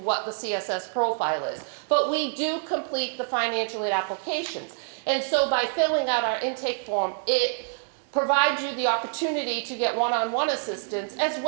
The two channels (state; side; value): silent; left; digital silence